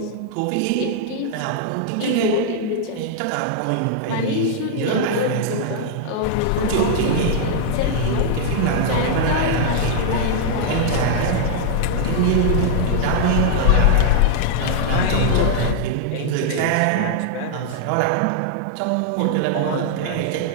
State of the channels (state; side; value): different; both; correlation -0.01